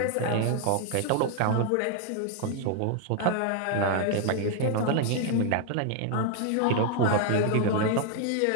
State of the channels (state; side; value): different; both; correlation 0.00